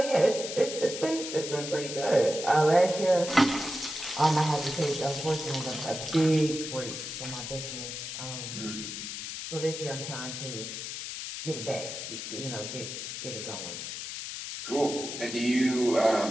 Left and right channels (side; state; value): left; noise; hiss, 7 dB below the sound